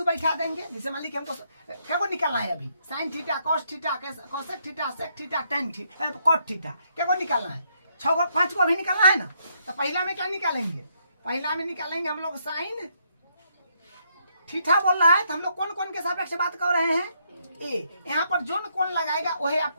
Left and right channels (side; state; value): both; inverted; correlation -0.74